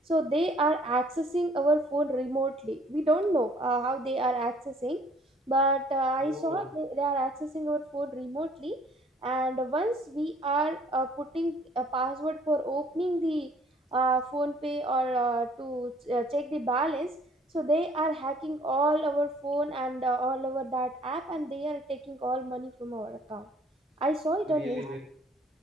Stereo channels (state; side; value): normal; both; correlation 0.58